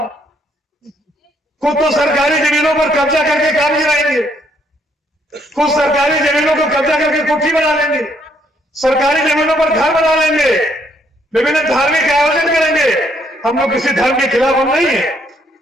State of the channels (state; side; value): normal; both; correlation 0.70